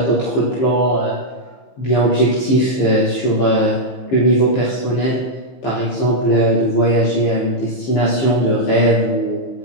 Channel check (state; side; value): late; right; 15 ms